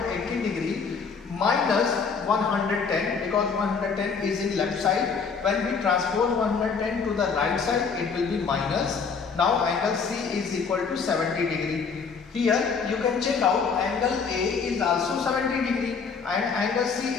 degree minus 110, because 110 is in left side. When we transpose 110 to the right side, it will be minus. Now angle C is equal to 70 degree. Here you can check out angle A is also 70 degree and angle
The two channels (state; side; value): quieter; right; 5.5 dB